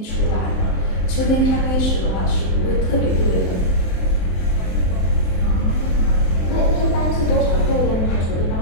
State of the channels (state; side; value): late; right; 23 ms